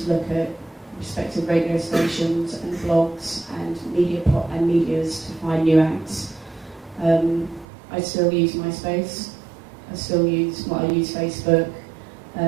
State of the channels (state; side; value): drops out; left; at 7.7 s